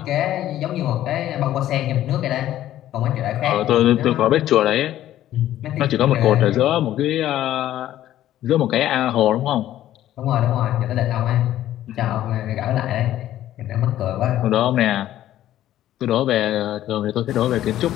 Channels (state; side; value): quieter; right; 13.0 dB